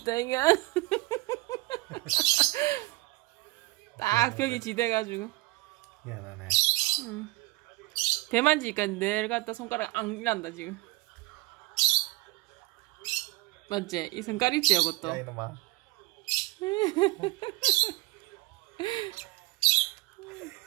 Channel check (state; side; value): quieter; left; 21.6 dB